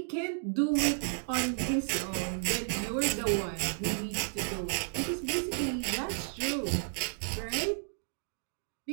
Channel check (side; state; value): left; silent; digital silence